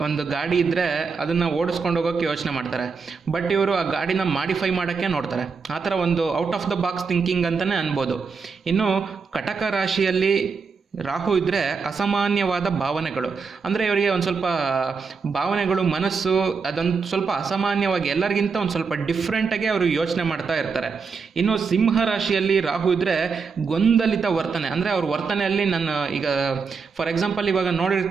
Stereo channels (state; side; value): quieter; left; 5.2 dB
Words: ಗಾಡಿ ಇದ್ದರೆ ಅದನ್ನು ಓಡಿಸ್ಕೊಂಡು ಹೋಗೋಕ್ಕೆ ಯೋಚನೆ ಮಾಡ್ತಾರೆ. ಬಟ್ ಇವರು ಆ ಗಾಡಿನ ಮಾಡಿಫೈ ಮಾಡೋಕ್ಕೆ ನೋಡ್ತಾರೆ. ಆ ಥರ ಒಂದು out of the box thinking ಅಂತಲೇ ಅನ್ಬೋದು. ಇನ್ನು ಕಟಕ ರಾಶಿಯಲ್ಲಿ ರಾಹು ಇದ್ದರೆ ಅಸಾಮಾನ್ಯವಾದ ಭಾವನೆಗಳು. ಅಂದರೆ ಇವರಿಗೆ ಒಂದು ಸ್ವಲ್ಪ ಭಾವನೆಗಳು, ಮನಸ್ಸು ಅದೊಂದು ಸ್ವಲ್ಪ ಅಸಾಮಾನ್ಯವಾಗಿ ಎಲ್ಲರಿಗಿಂತ ಒಂದು ಸ್ವಲ್ಪ ಡಿಫ್ರೆಂಟಾಗಿ ಅವರು ಯೋಚನೆ ಮಾಡ್ತಾ ಇರ್ತಾರೆ. ಇನ್ನು ಸಿಂಹ ರಾಶಿಯಲ್ಲಿ ರಾಹು ಇದ್ದರೆ ಗೊಂದಲಿತ ವರ್ತನೆ. ಅಂದರೆ ಅವ್ರ ವರ್ತನೆಯಲ್ಲಿ ಫಾರ್ ಎಕ್ಸಾಂಪಲ್